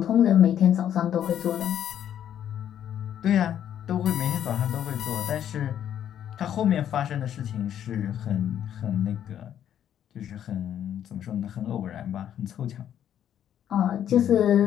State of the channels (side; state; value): right; quieter; 10.1 dB